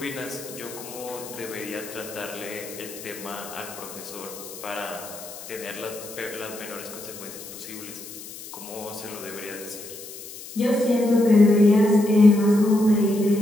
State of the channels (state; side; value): noise; left; hiss, 14 dB below the sound